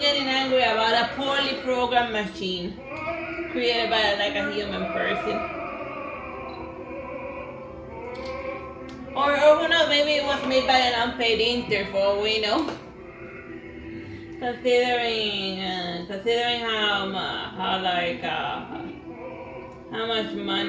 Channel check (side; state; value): both; identical; correlation 1.00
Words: angry about a poorly programmed machine created by like a human person. Or who knows, maybe it was made by an unpaid intern for all we know. Considering how much